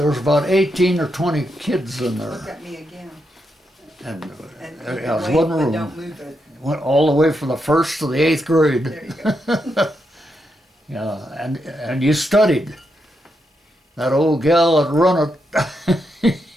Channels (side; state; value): both; normal; correlation 0.83